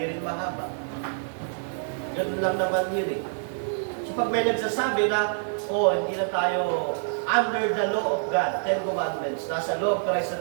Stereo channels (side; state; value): left; silent; digital silence